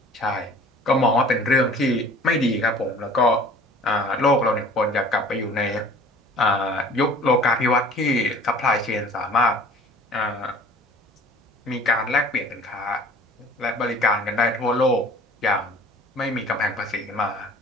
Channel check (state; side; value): normal; both; correlation 0.48